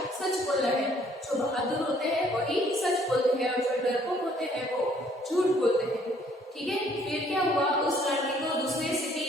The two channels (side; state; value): both; normal; correlation 0.62